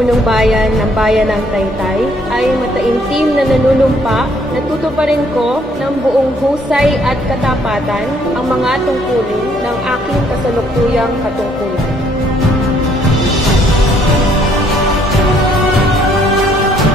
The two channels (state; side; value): normal; both; correlation 0.66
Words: bayan ng bayan ng Taytay ay mataimtim na nanunumpa na tutuparin ko ng buong husay at katapatan ang mga tungkulin ng aking kasalukuyang katungkulan.